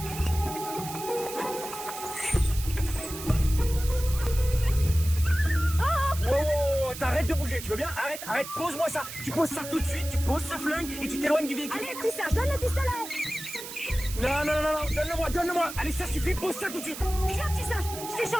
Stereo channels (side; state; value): right; noise; hiss, 10 dB below the sound